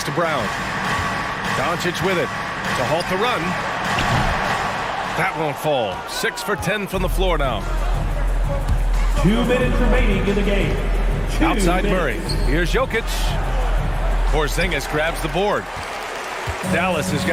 to Brown. Doncic with it to halt the run. That won't fall. 6 for 10 from the floor now. 2 minutes remaining in the game. Outside Murray. Here's Jokic. Porzingis grabs the board. Dallas has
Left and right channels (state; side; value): identical; both; correlation 1.00